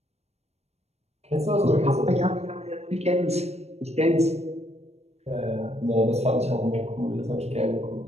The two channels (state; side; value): late; left; 0.31 ms